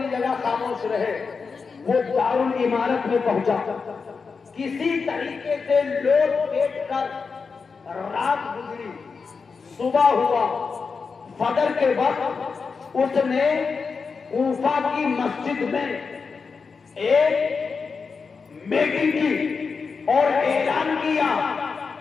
جگہ خاموش رہے، وہ دارالعمارت میں پہنچا، کسی طریقے سے لوٹ پیٹ کر رات گزری، صبح ہوا، فجر کے وقت اس نے کوفہ کی مسجد میں ایک میٹنگ کی اور اعلان کیا،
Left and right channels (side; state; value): right; quieter; 5.1 dB